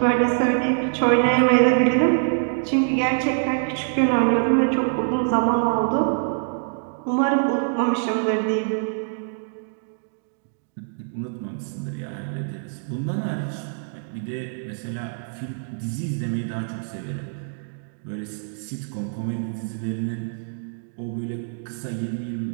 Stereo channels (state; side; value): silent; left; digital silence